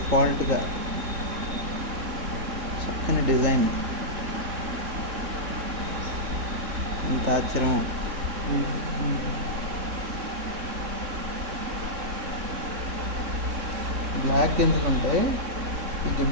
చక్కని డిజైన్. ఎంత ఆశ్చర్యం! బ్లాక్ గింజలు ఉంటాయి. ఈ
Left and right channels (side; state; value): left; late; 3.6 ms